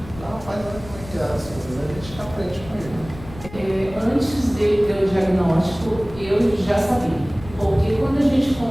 Rapaz, olha como é que é as coisas, a gente aprende com ele. Antes dele ter o diagnóstico, eu já sabia. Porque quando a gente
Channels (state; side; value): noise; left; rumble, 16 dB below the sound